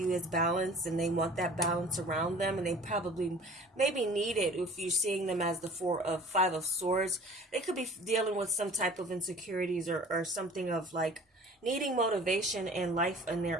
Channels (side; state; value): both; normal; correlation 0.46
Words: as balanced, and they want that balance around them, and they probably maybe need it. If you're seeing them as the Five of Swords, they could be dealing with some type of insecurities, or something of like needing motivation in life in